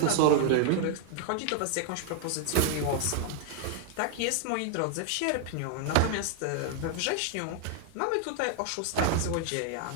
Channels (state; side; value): different; both; correlation 0.00